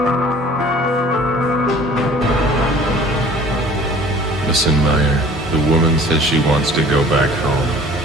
Listen, Meyer. The woman says she wants to go back home.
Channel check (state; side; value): normal; both; correlation 0.49